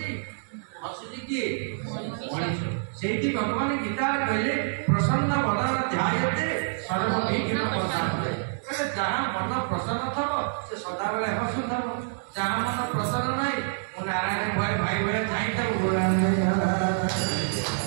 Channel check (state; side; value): silent; left; digital silence